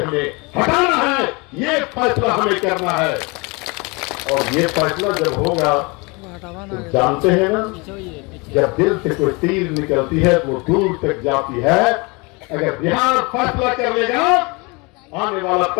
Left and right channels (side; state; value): right; quieter; 28.0 dB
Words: हमें हटाना है? ये फैसला हमें करना है। और ये फैसला जब होगा तो जानते हैं ना, जब दिल से कोई तीर निकलती है वो दूर तक जाती है। अगर बिहार फैसला कर लेगा, आने वाला